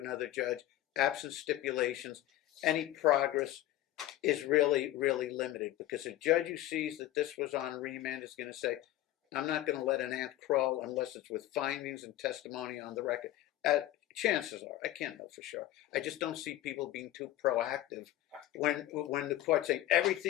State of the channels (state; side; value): quieter; right; 14.3 dB